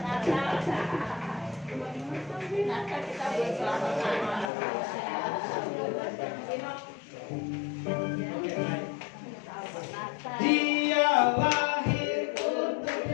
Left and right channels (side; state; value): right; drops out; at 4.5 s